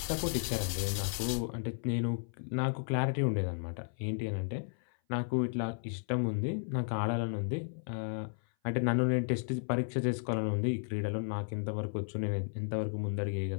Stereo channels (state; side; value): silent; right; 55 dB below the other